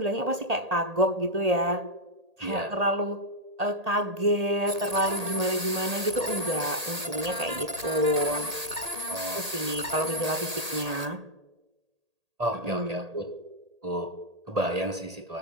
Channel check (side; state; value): left; late; 1.8 ms